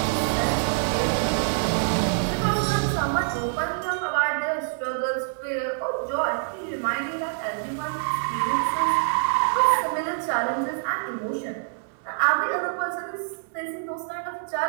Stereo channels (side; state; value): left; silent; 61 dB below the other